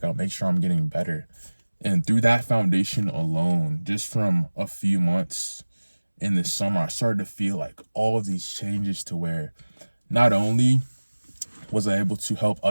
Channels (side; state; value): both; inverted; correlation -1.00